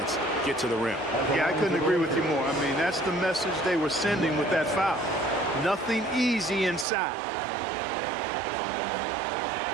get to the rim. Yeah, I couldn't agree with you more. I mean, that's the message they were sending with that foul. Nothing easy inside.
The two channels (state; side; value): drops out; left; at 6.9 s